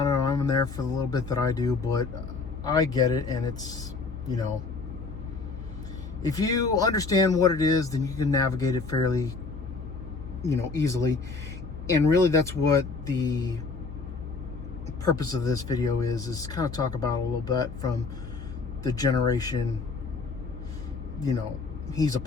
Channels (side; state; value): right; quieter; 4.2 dB